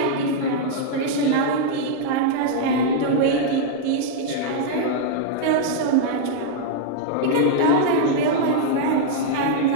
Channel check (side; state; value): both; different; correlation -0.01